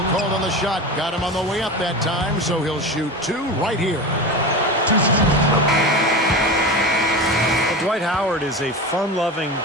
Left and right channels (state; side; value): normal; both; correlation 0.27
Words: called on the shot. Got him on the way up that time, so he'll shoot 2 right here. Well, Dwight Howard is a fun-loving